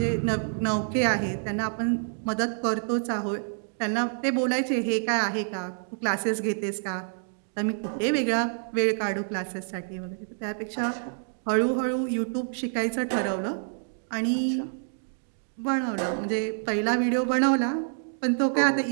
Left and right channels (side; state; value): left; silent; digital silence